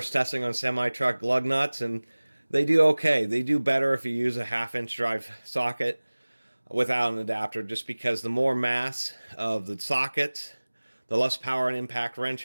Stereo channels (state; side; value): inverted; both; correlation -1.00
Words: testing on semi-truck lug nuts, and they do okay. They do better if you use a half-inch drive socket without an adapter, just because the more mass of the socket, the less power an impact wrench